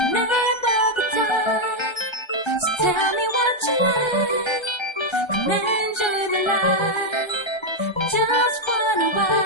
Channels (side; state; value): right; late; 1.3 ms